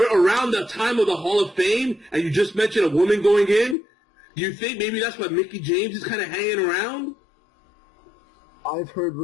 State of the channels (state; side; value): drops out; right; at 3.8 s